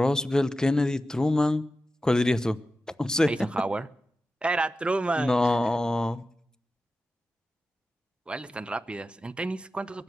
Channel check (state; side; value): normal; both; correlation 0.93